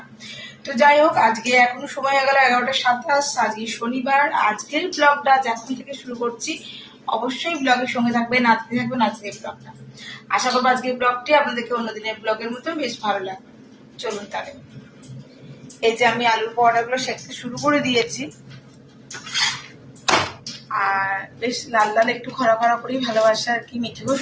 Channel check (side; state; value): both; identical; correlation 1.00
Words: তো যাই হোক, আজকে এখন সময় হয়ে গেল 11টা 27। আজকে শনিবার। আজকের ব্লগটা এখন থেকে শুরু করছি। অবশ্যই ব্লগের সঙ্গে থাকবেন, নাচতে থাকবেন আজকের ব্লগটা। আশা করবো আজকের ব্লগটি আপনাদেরকে অন্যদিনের ব্লগের মতো বেশ ভালো লাগবে। চলুন তাহলে। এই যে আমি আলুর পরোটাগুলো সেঁকতে শুরু করে দিয়েছি, আর বেশ লাল লাল একটু খরা খরা করেই ভালোবাসা আর কি। মিঠেও